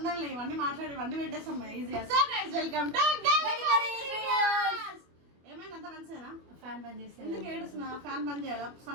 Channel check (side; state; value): left; late; 25 ms